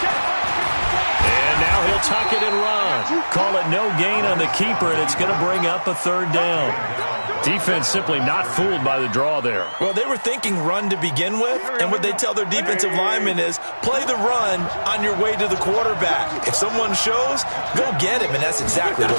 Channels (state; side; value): inverted; both; correlation -1.00